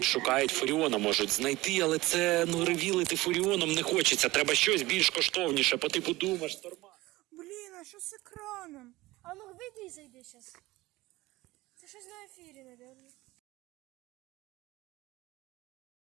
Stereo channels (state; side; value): quieter; left; 19.3 dB